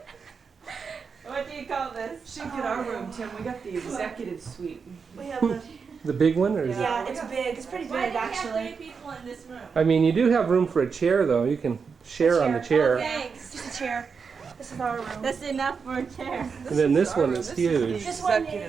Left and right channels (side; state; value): left; quieter; 5.6 dB